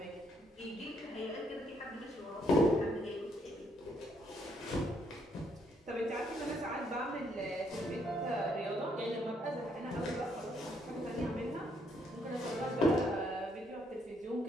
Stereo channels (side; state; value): both; normal; correlation 0.71